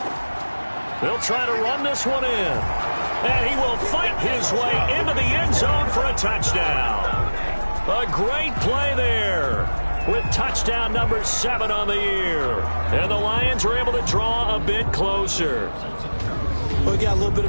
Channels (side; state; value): both; inverted; correlation -1.00